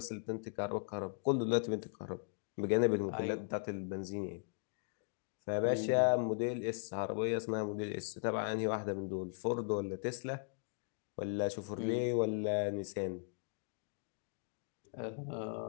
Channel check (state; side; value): silent; right; digital silence